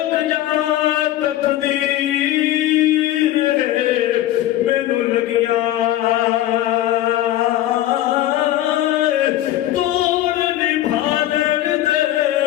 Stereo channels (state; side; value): quieter; right; 14.0 dB